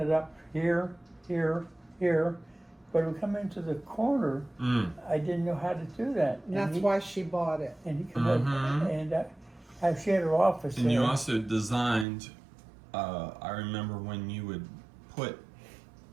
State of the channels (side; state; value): left; drops out; at 12.1 s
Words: up here, here, here. But when we come into the corner, I didn't know how to do that. And that's why she bought it. And he come up, and she had her office And there. you also designed, I remember when you would put